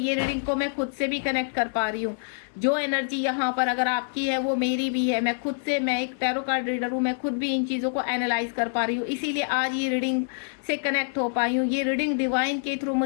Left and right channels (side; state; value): right; silent; 58 dB below the other